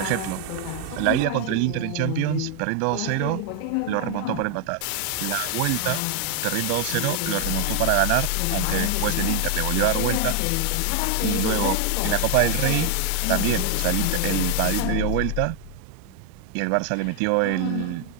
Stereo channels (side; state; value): both; different; correlation 0.00